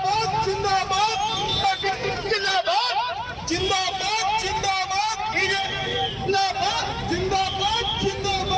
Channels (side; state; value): both; identical; correlation 1.00